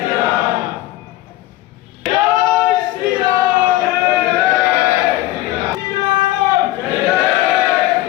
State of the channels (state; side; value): quieter; right; 16.1 dB